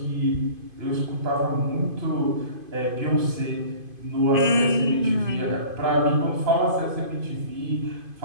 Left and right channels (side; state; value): left; late; 2.5 ms